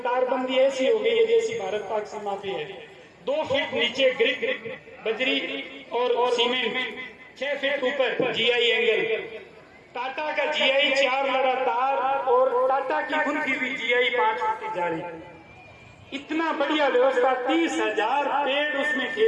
तारबंदी ऐसी हो गई है जैसी भारत पाक सीमा पे है। 2 फीट नीचे ग्रिक बजरी और सीमेंट, 6 फीट ऊपर जीआई एंगल। टाटा का जीआई 4 लगातार, और टाटा की कुल्फी भी जीआई 5 फीट जारी। इतना बढ़िया व्यवस्था, 30,000 पेड़ उसमें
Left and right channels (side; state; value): both; identical; correlation 1.00